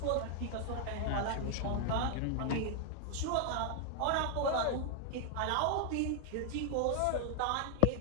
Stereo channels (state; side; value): different; both; correlation 0.00